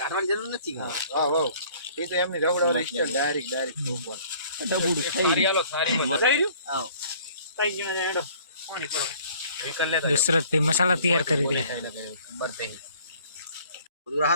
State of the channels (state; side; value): inverted; both; correlation -0.55